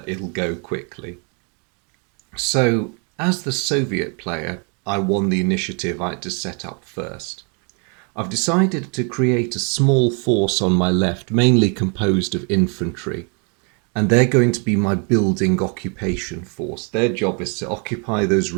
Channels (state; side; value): quieter; left; 36.9 dB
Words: it'll go quickly. So, as the Soviet player, I won the initiative I had to set up first. I've decided to create a small force on my left, mainly composed of infantry, and they're going to be my building occupation force. Their job is to occupy those